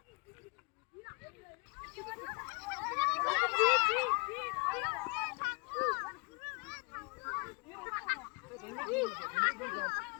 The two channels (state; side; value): quieter; right; 32.0 dB